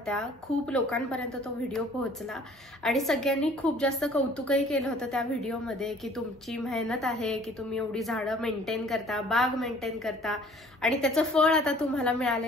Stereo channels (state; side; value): normal; both; correlation 0.54